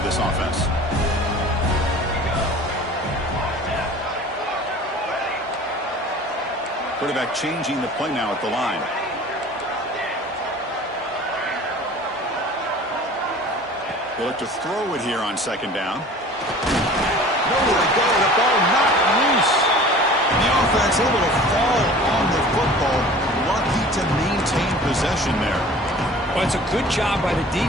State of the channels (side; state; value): both; normal; correlation 0.44